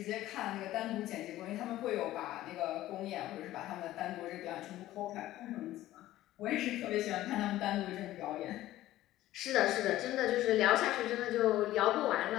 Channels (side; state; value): right; quieter; 15.0 dB